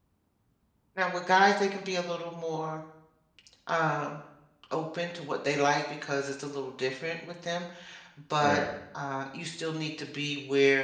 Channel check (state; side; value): identical; both; correlation 1.00